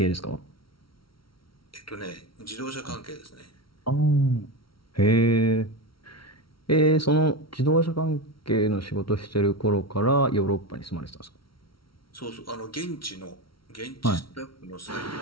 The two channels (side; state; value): right; late; 0.74 ms